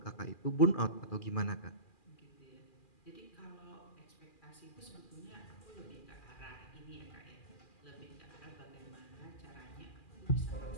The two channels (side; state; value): right; late; 2.4 ms